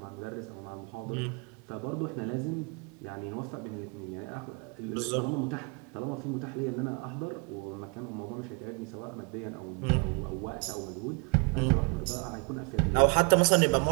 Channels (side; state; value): left; quieter; 33.0 dB